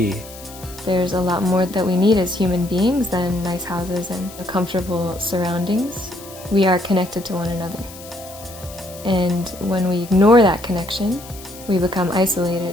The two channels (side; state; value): left; noise; hiss, 17 dB below the sound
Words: There's a lot more that we need as human beings than nice houses and comfortable surroundings. We are connected to one another. And when we ignore that connection, we become